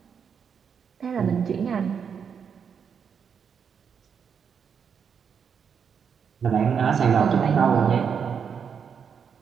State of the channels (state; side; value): quieter; left; 6.9 dB